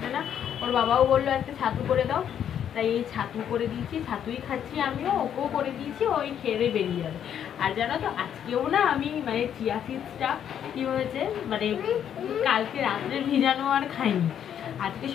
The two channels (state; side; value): quieter; right; 9.3 dB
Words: না। ওর বাবাও বললো একটা ছাতু করে দাও, তাই এই ছাতু করে দিয়েছি, ছাতুই খাচ্ছি আমিও, ওকেও করে দিয়েছি, ওই খেয়ে বেরিয়ে যাবে। আর জানো তো আজকেও না আমি মানে চিয়া সিডসটা কি হয়েছে, মানে কালকে রাত্রে ভিজানো আর খাইনি, আজকে